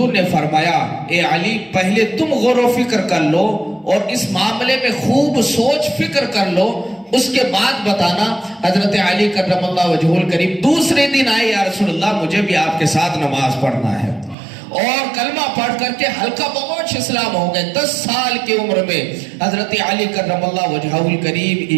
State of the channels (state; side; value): drops out; left; at 14.4 s